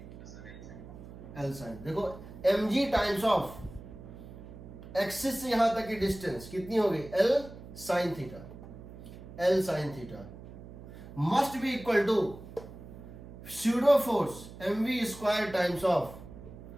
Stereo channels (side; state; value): right; noise; hum, 15 dB below the sound